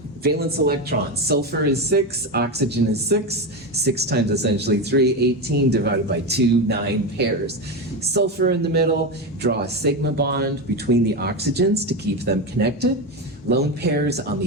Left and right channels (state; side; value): normal; both; correlation 0.15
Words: Valence electrons, sulfur is 6, oxygen is 6, 6 times essentially 3, 18 divided by 2, 9 pairs. Sulfur in the middle, draw a sigma bond between the oxygens to keep them connected. Lone pairs on